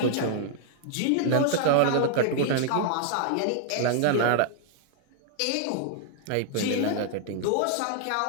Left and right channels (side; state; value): both; different; correlation 0.00